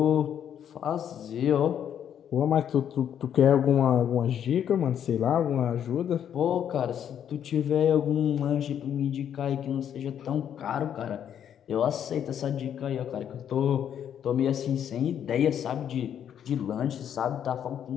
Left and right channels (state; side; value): quieter; right; 9.3 dB